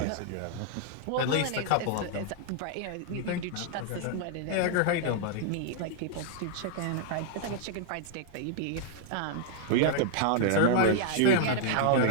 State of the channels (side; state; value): both; different; correlation 0.00